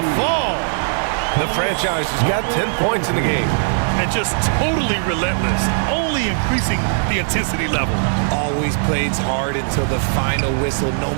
fall. The franchise has got 10 points in the game. And just totally relentless, only increasing the intensity level. Always plays hard until the final whistle, no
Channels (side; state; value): left; silent; 67 dB below the other